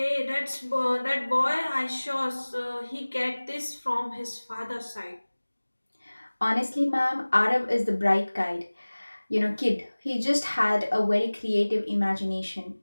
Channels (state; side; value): inverted; both; correlation -1.00